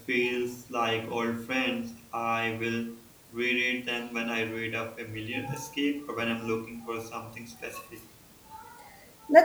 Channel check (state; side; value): identical; both; correlation 1.00